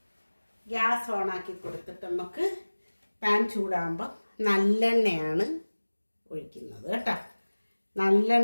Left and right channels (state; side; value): inverted; both; correlation -1.00